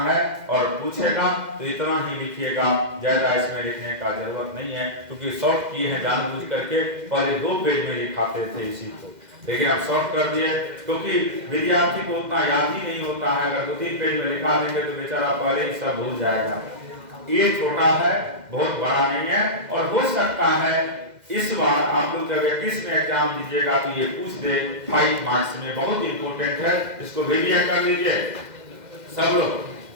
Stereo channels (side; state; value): left; late; 2.0 ms